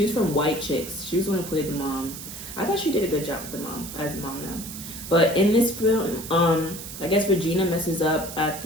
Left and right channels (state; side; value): noise; right; hiss, 11 dB below the sound